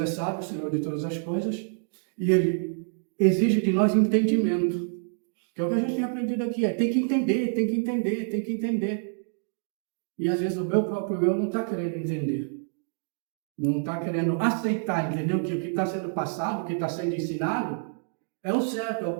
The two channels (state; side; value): silent; left; digital silence